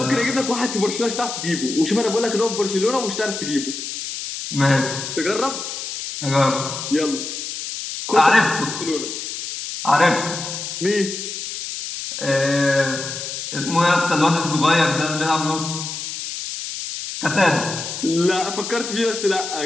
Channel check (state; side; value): noise; left; hiss, 6 dB below the sound